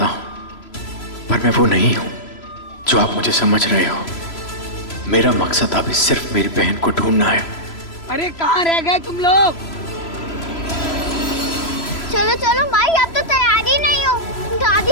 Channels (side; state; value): right; late; 3.0 ms